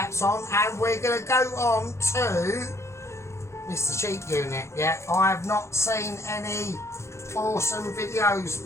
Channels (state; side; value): late; right; 0.13 ms